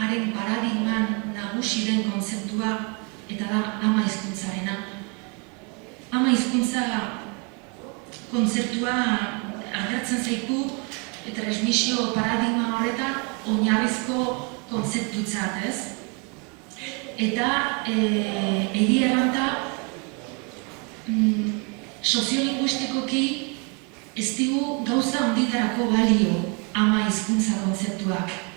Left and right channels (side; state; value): left; quieter; 33.0 dB